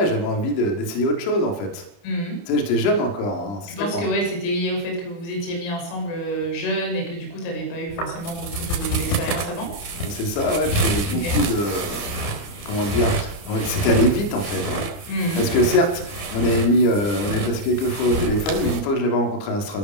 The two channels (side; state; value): right; late; 29 ms